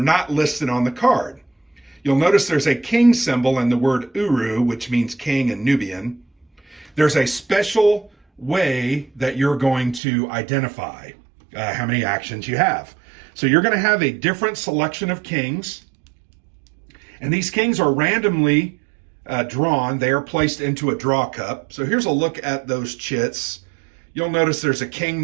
listed on the card. You'll notice there's a king symbol and the word Uru, which means king in Nubian. There's a special way that you're going to identify how many actions you have. So you're going to have a different selection of kings, and these kings are randomly drawn. They are placed into a draw cup. So here's a look at those chits. You'll notice there's a king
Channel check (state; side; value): drops out; left; at 10.0 s